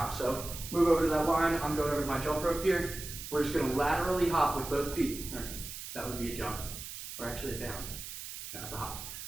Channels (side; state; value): right; noise; hiss, 9 dB below the sound